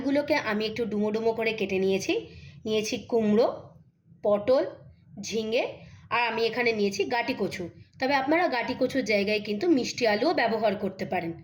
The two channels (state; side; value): identical; both; correlation 1.00